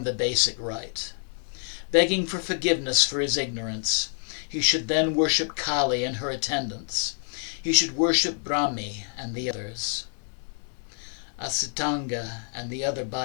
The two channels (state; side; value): silent; right; 60 dB below the other